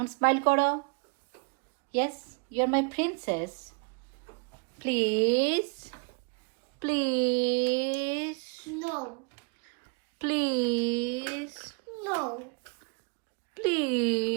স্মাইল করো। Yes, you are my princess. Please, please, No. Please, No.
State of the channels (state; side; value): quieter; left; 35.2 dB